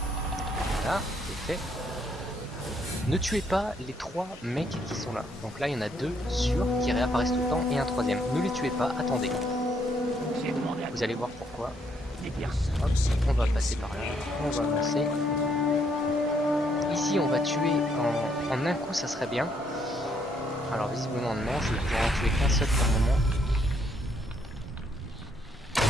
Voilà, c'est fait. Ne tuez pas les 3 mecs qui sont là. Donc là, il y en a 2 sûrs qui réapparaissent tout le temps et un troisième. Ne les tuez pas, attendez. Vous allez voir pourquoi. Hop, on va passer par là, on va avancer. Ici, on va tuer en un coup, ça serait bien. Alors visiblement non, je vais pouvoir en tuer qu'un seul pour le moment.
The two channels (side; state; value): both; normal; correlation 0.71